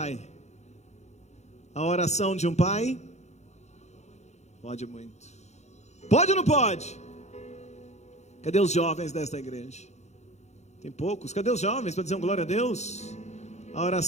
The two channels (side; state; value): right; late; 0.33 ms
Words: A oração de um pai pode muito. Pode ou não pode? Cadê os jovens desta igreja? Tem poucos. Cadê os jovens para dizer um glória a Deus? A